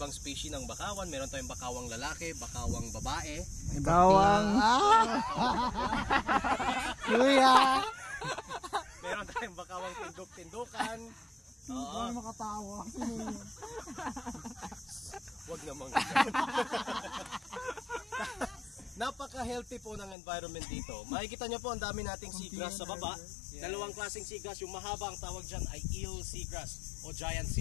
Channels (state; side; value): drops out; right; at 20.2 s